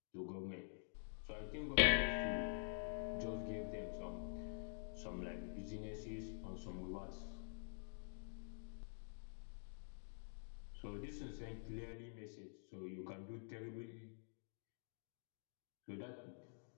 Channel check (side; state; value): right; silent; digital silence